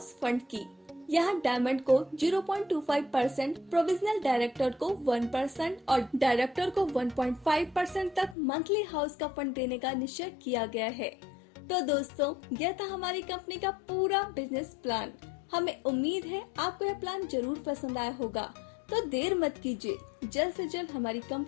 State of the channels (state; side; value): drops out; right; at 8.3 s